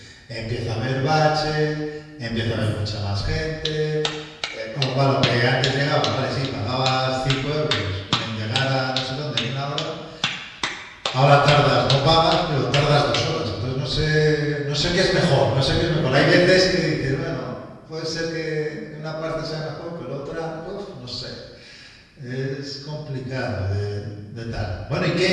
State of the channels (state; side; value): identical; both; correlation 1.00